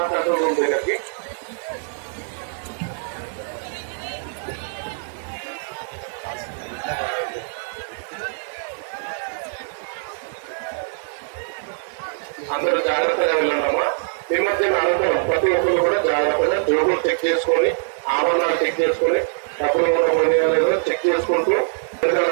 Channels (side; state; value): left; silent; digital silence